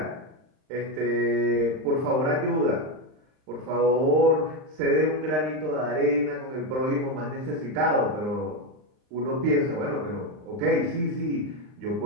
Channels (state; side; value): late; left; 39 ms